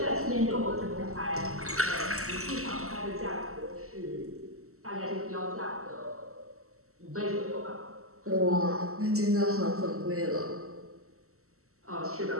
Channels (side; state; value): left; late; 0.63 ms